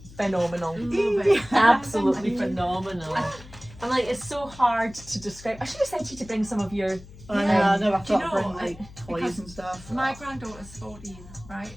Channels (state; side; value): noise; left; hum, 19 dB below the sound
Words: phenomenal. Love it. Absolutely phenomenal. And like, it's so hard to describe. I should have said to you to bring some of your. I Yeah. know, I've Do you got to bring know, like toys because and stuff. My granddaughter's 14, right?